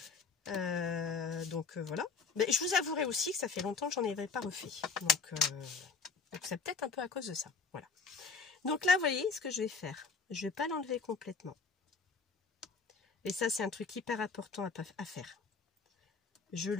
Voilà. Mais je vous avouerai aussi que ça fait longtemps que j'en avais pas refait. Donc c'est peut-être un peu à cause de ça. Voilà. Donc là, vous voyez ce que je vais faire. Je vais pas l'enlever complètement. Et ça, c'est un truc hyper important à faire. Je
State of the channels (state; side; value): quieter; right; 4.8 dB